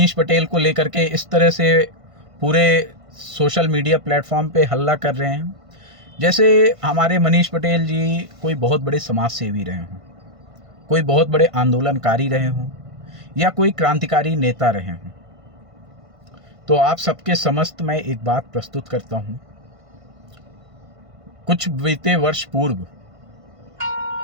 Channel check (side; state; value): left; late; 1.5 ms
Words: पटेल को लेकर के इस तरह से पूरे सोशल मीडिया प्लेटफॉर्म पे हल्ला कर रहे हैं जैसे हमारे मनीष पटेल जी कोई बहुत बड़े समाज सेवी रहे हों, कोई बहुत बड़े आंदोलनकारी रहे हों या कोई क्रांतिकारी नेता रहे हों। तो आप सबके समस्त मैं एक बात प्रस्तुत करता हूं। कुछ बीते वर्ष पूर्व